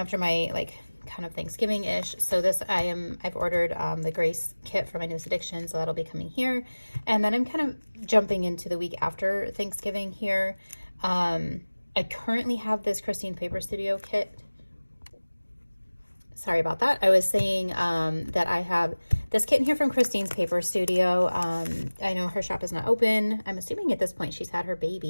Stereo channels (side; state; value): both; inverted; correlation -1.00